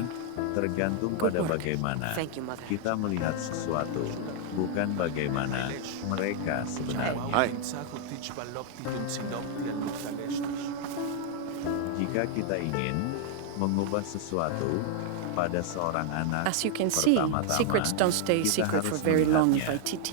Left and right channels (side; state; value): both; different; correlation 0.00